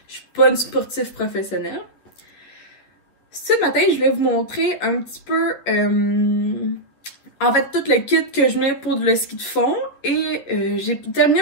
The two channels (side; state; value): right; late; 11 ms